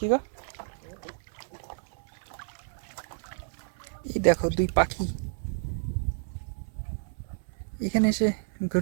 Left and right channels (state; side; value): silent; left; 58 dB below the other